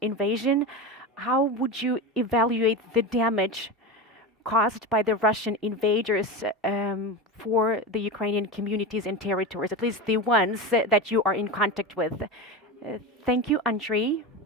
invasion. How would you evaluate the damage caused by the Russian invaders for the Ukrainian communities and territories, at least the ones that you are in contact with? Thank you, Andriy.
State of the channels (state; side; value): normal; both; correlation 0.22